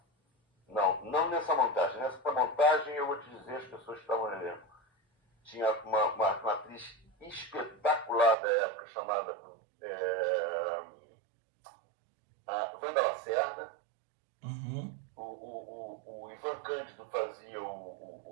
nessa montagem. Nessa montagem, eu vou te dizer as pessoas que estavam no elenco. Tinha uma atriz espetacular da época chamada a Wanda Lacerda.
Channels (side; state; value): left; drops out; at 8.3 s